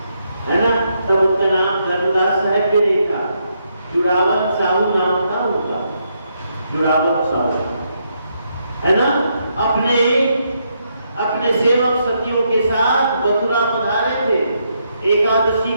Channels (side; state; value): both; inverted; correlation -0.78